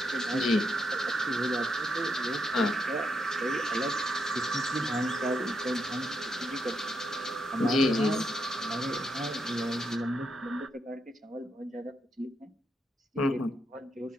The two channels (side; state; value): both; normal; correlation 0.80